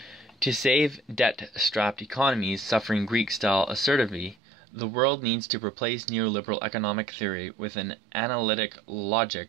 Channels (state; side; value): drops out; left; at 4.4 s